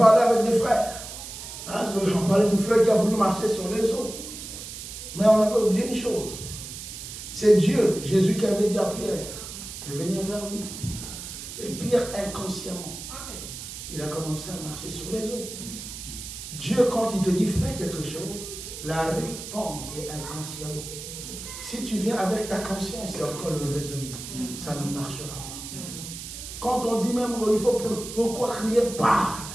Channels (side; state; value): right; noise; hiss, 10 dB below the sound